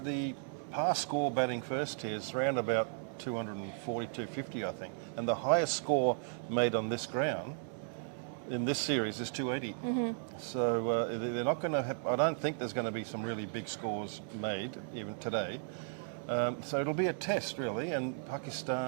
the past score batting first here is around about 240, 250, I think, and the highest score made on this ground in this series is 280. So they're not going to have, I don't think there's going to be some really big scores made even today. So it'll be a test really, and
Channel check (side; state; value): left; silent; digital silence